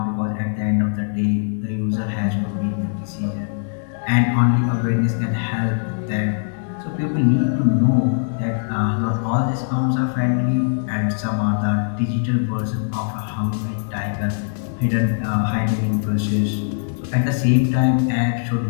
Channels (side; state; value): right; silent; 65 dB below the other